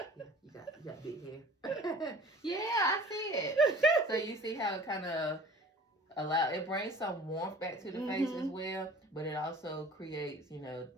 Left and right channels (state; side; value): normal; both; correlation 0.45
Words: Yeah, you got big hair. Yeah, I see it. So you see how it kind of it brings some warmth back to the face as well, but it also creates, you know,